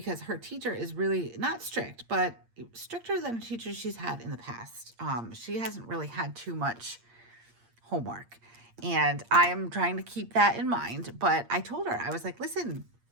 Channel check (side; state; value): left; late; 8.6 ms